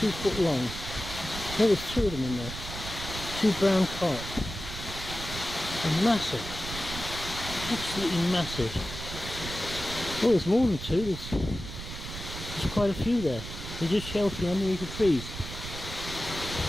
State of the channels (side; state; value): right; noise; rumble, 9 dB below the sound